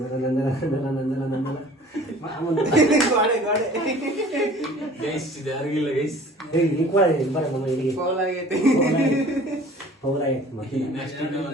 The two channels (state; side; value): normal; both; correlation 0.48